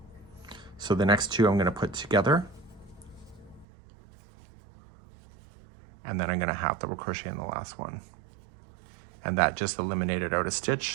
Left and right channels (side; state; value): left; drops out; at 3.7 s